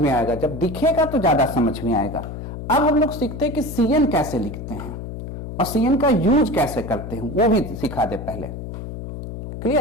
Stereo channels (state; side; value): noise; left; hum, 8 dB below the sound